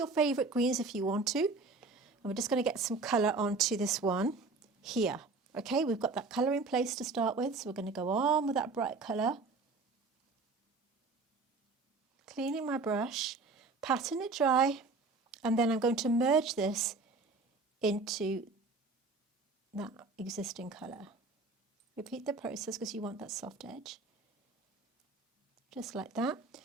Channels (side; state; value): left; quieter; 3.9 dB